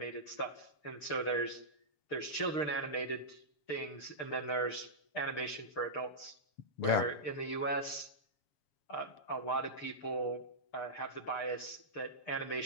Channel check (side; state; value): right; late; 6.7 ms